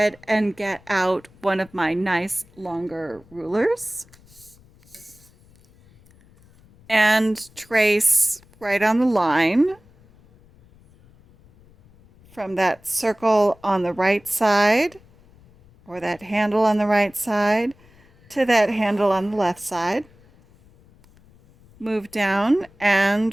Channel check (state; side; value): noise; left; rumble, 28 dB below the sound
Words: and get out one of my nice longer rulers and trace right on the line from that circle on the right side, or that handle on the right side, to that handle on the left side. Move down